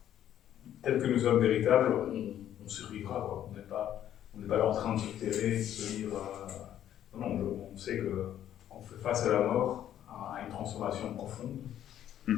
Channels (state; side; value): quieter; right; 11.1 dB